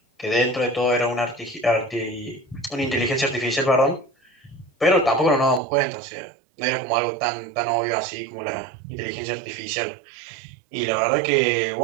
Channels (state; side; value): drops out; left; at 5.6 s